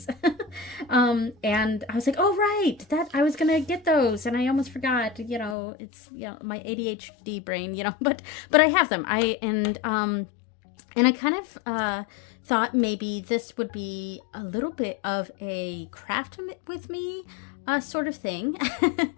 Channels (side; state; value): right; drops out; at 5.6 s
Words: And I was like, oh, right, that I was going to get those. And I almost forgot, it's, my ADHD brain, but I have them. And I kind of, thought maybe this would be a little bit of a craft with me sort of thing.